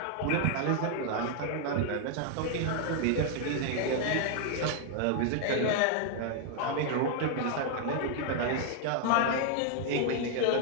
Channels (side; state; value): both; different; correlation 0.00